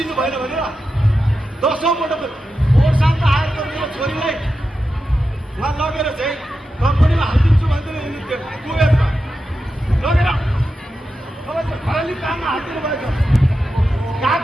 भएन भनेर? 10औं पटक ओरसाम्म आएको मेरो छोरीलाई उहाँ लगेर चाहिँ कम्पनीमा हालिदिन्छु भन्दै कुवेतमा लगेर खराली काममा हालिदिनु भएको।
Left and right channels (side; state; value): both; normal; correlation 0.90